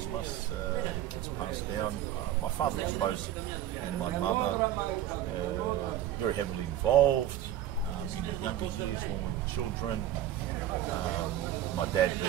μας. It gets passed down. My father, I suppose, and my mother very heavily involved in the younger years when we were children. My dad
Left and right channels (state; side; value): quieter; left; 11.9 dB